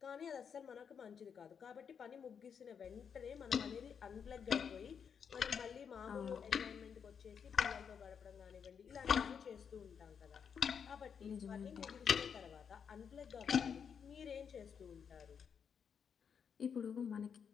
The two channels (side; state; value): right; quieter; 7.0 dB